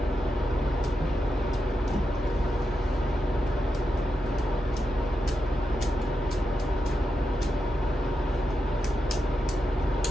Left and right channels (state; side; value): normal; both; correlation 0.87